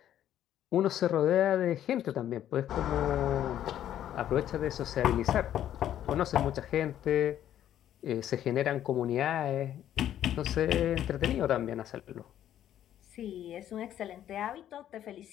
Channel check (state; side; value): quieter; right; 11.2 dB